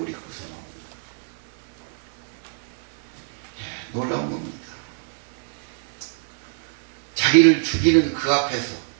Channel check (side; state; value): left; silent; digital silence